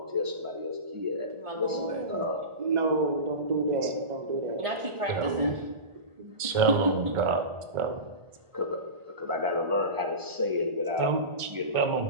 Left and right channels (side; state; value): left; late; 1.4 ms